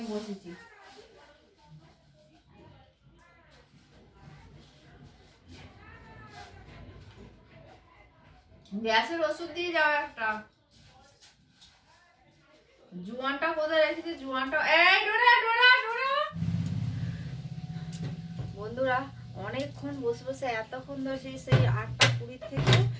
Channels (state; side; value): identical; both; correlation 1.00